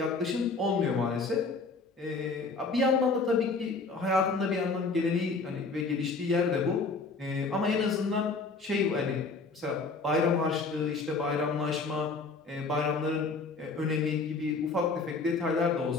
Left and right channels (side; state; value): right; quieter; 4.1 dB